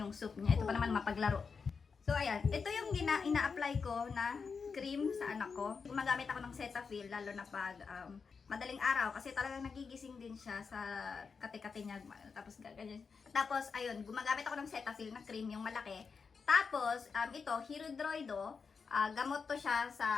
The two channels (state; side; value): quieter; right; 5.4 dB